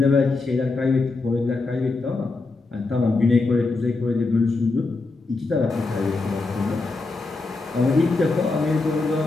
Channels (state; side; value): quieter; right; 3.6 dB